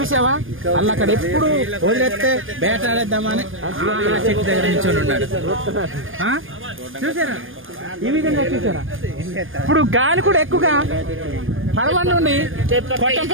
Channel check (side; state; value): left; late; 0.59 ms